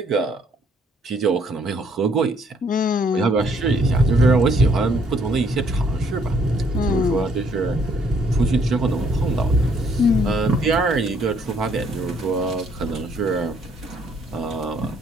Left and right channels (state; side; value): normal; both; correlation 0.66